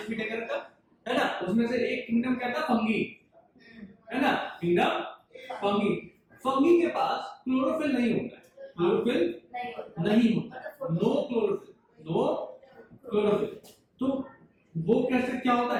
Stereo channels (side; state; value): both; identical; correlation 1.00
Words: टेकर का, है ना। उसमें से एक किंगडम क्या था, फंगी, है ना, किंगडम फंगी। फंगी के पास क्लोरोफिल नहीं होता है, क्लोरोफिल नहीं होता, नो क्लोरोफिल, नो क्लोरोफिल। तो वो कैसे क्या होता